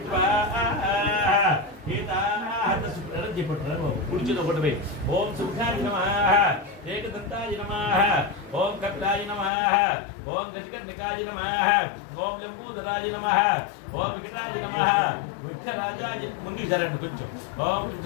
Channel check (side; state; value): right; drops out; at 9.5 s